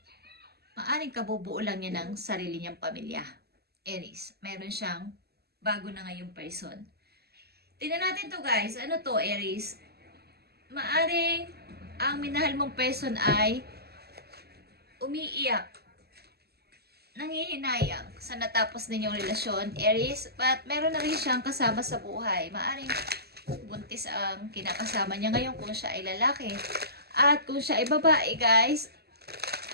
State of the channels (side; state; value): left; late; 0.46 ms